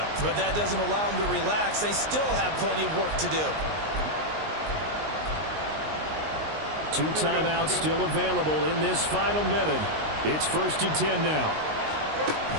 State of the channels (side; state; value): left; late; 19 ms